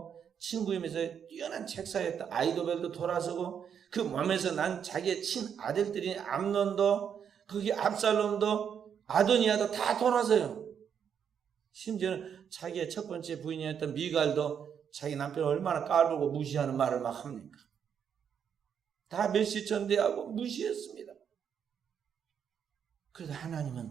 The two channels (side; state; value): left; quieter; 7.9 dB